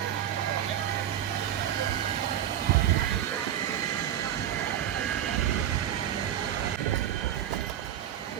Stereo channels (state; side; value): quieter; left; 11.0 dB